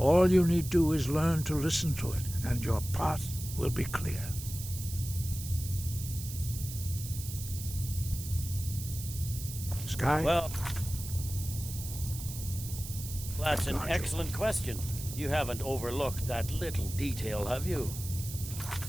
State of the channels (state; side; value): noise; right; hiss, 10 dB below the sound